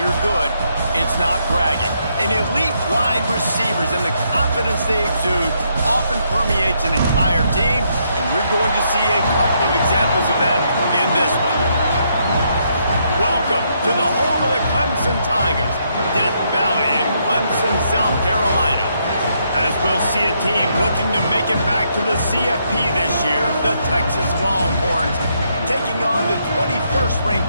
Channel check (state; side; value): inverted; both; correlation -0.75